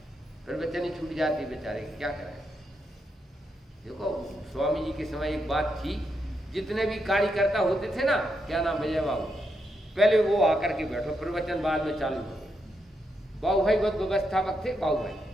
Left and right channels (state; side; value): normal; both; correlation 0.82